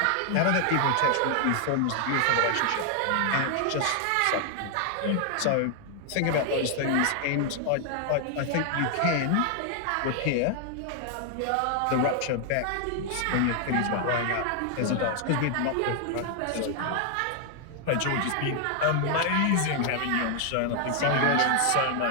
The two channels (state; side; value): different; both; correlation 0.00